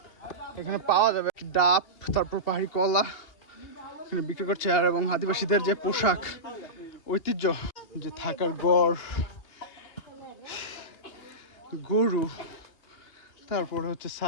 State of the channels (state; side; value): late; right; 2.8 ms